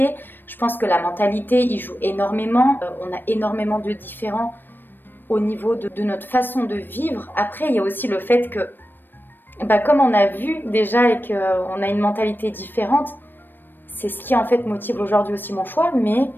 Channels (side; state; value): right; late; 0.094 ms